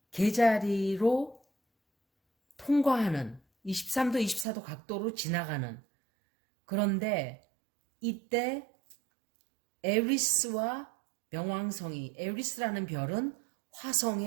계자리로 통과하는 23도, 24도 각도로 지나가는. 그런데 이때 에리스와 명왕성이, 에리스라는 별은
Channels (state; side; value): drops out; left; at 4.5 s